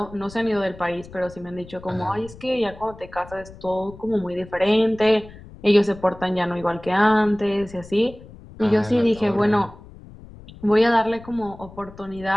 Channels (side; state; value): left; noise; rumble, 19 dB below the sound